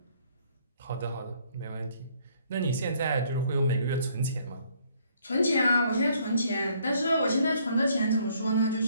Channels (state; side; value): inverted; both; correlation -0.64